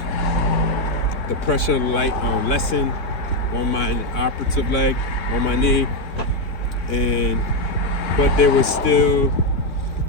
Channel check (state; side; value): late; right; 3.1 ms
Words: pressure lessen on my operative leg, on my knee, but there was still